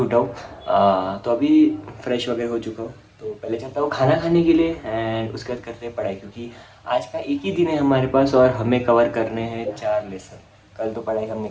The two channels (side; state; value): both; identical; correlation 1.00